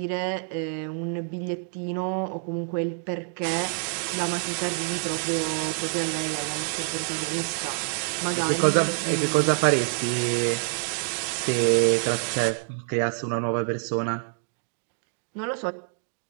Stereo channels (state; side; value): silent; left; 60 dB below the other